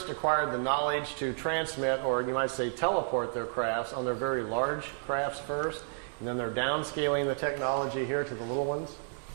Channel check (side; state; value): left; silent; digital silence